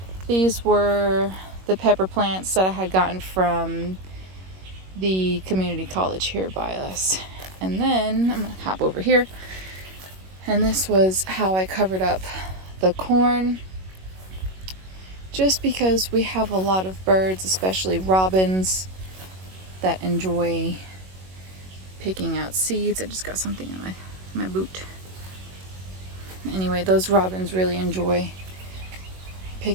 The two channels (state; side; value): late; left; 21 ms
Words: these were the pepper plants that I had gotten from the community college here by us. And then I'm gonna hop over here, and this was how I covered up the corn, just because we have a lot of birds, especially robins, that enjoy picking out seeds. I just got something in my boot. Anyway, those robins really enjoy